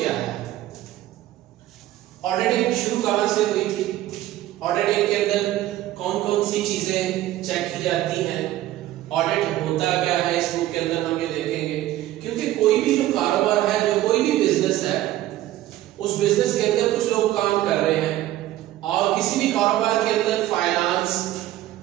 है। ऑडिटिंग शुरू कहां से हुई थी, ऑडिटिंग के अंदर कौन कौन सी चीजें चेक की जाती हैं, ऑडिट होता क्या है, इस बुक के अंदर हम ये देखेंगे। क्योंकि कोई भी जो कारोबार है, जो कोई भी बिजनेस है, उस बिजनेस के अंदर कुछ लोग काम कर रहे हैं और किसी भी कारोबार के अंदर फाइनेंस,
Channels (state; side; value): quieter; left; 14.4 dB